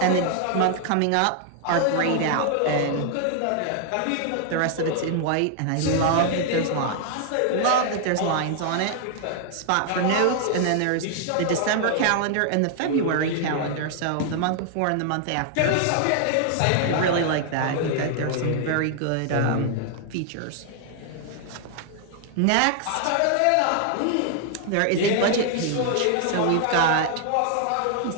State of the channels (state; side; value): different; both; correlation 0.00